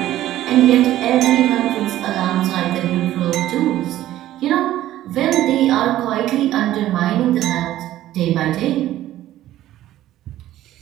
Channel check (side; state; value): left; quieter; 13.8 dB